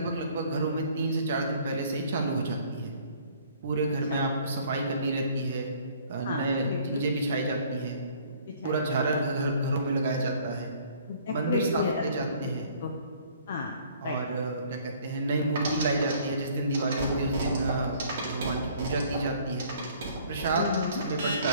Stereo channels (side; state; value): both; inverted; correlation -0.57